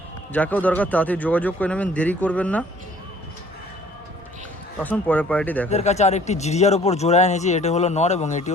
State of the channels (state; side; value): normal; both; correlation 0.54